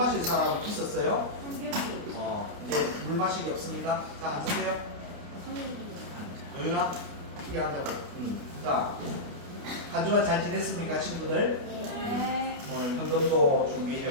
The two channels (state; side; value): late; left; 29 ms